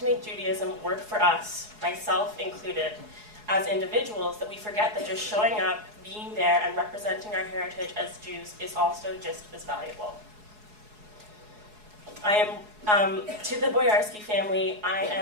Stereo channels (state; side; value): late; left; 4.7 ms